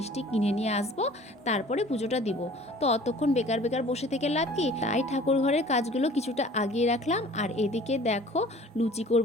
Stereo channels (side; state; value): both; normal; correlation 0.48